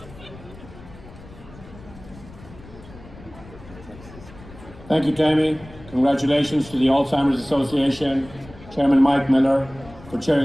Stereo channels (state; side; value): noise; left; rumble, 19 dB below the sound